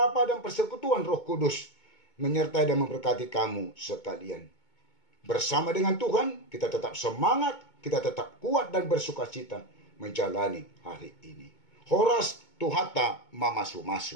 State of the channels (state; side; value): late; right; 2.2 ms